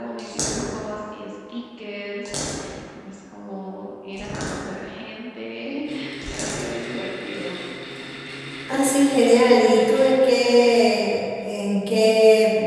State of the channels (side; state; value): both; identical; correlation 1.00